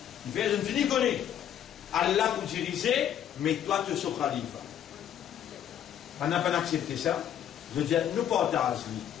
Il fait, je ne finis connaître. Allah pour diriger, mais toi tu es son khalifa. On n'a pas accepté ça. Je veux dire, nous partageons.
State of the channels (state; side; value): quieter; right; 10.0 dB